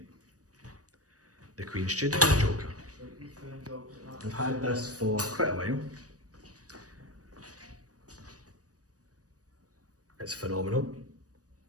the Queen Studios Joker. I've had this for quite a while. It's phenomenal.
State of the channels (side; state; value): left; late; 0.67 ms